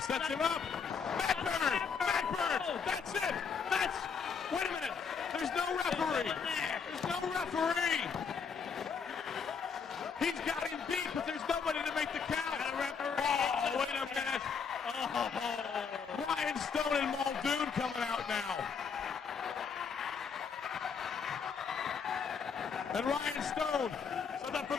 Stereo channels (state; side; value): quieter; right; 6.1 dB